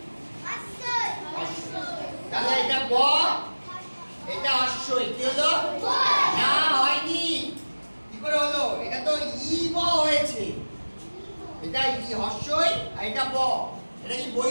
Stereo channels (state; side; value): inverted; both; correlation -1.00